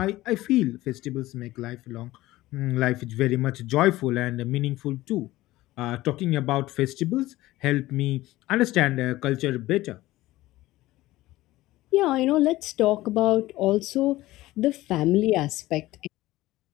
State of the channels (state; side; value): quieter; right; 17.3 dB